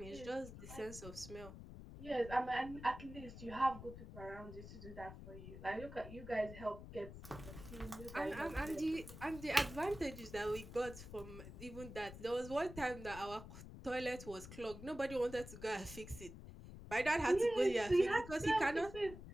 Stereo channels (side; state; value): left; noise; rumble, 12 dB below the sound